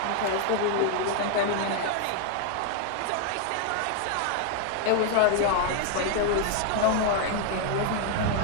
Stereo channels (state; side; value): different; both; correlation 0.00